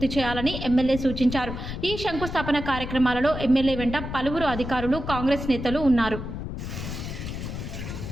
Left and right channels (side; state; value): left; noise; rumble, 7 dB below the sound